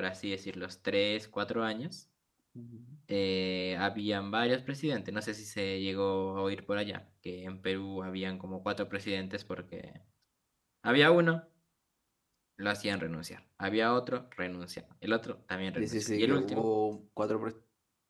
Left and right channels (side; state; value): both; identical; correlation 1.00